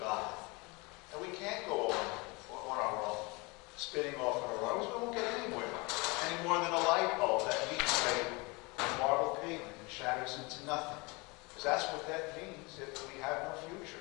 and we can't go on our own, spinning off on our own, we won't get anywhere. Any more than a light bulb that meets a marble pavement and shatters into nothing. Because that's what that means if we have no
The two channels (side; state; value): right; quieter; 26.9 dB